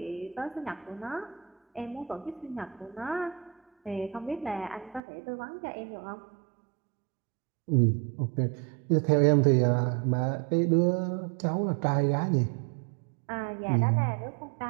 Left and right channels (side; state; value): left; drops out; at 5.0 s